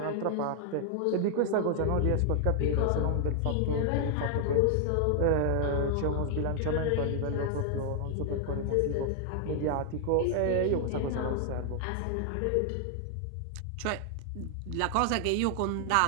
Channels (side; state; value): both; different; correlation 0.00